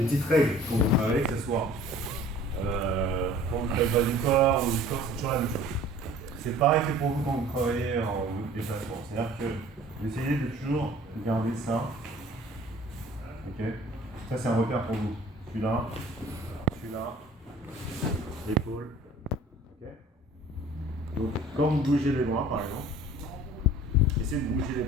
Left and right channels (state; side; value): normal; both; correlation 0.49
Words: petites règles quand vous travaillez, que ce soit quand vous faites pas du corps ou du corps, c'est toujours la même chose. C'est pareil que pour vous quand vous travaillez en déplacement. C'est-à-dire que vous essayez de toujours garder ça. Ok. Ça, c'est un repère pour vous. Celui-là, l'épaule. Ok. Donc, quand vous bougez les bras, par exemple, essayez de bouger les